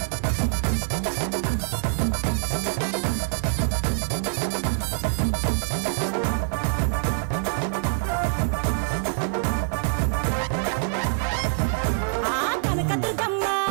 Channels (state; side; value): silent; left; digital silence